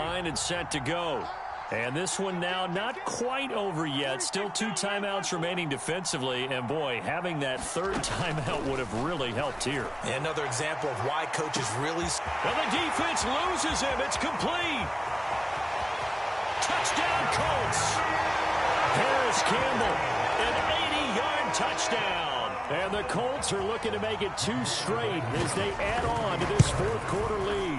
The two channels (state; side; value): identical; both; correlation 1.00